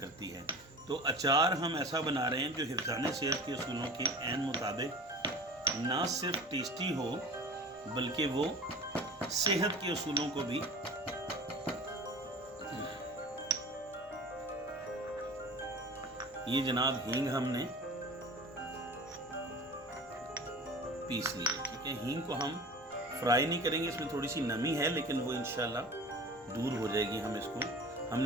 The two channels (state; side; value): noise; left; rumble, 29 dB below the sound